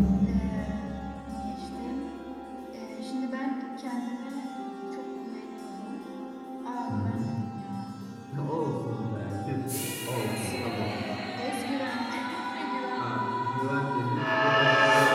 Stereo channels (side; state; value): both; identical; correlation 1.00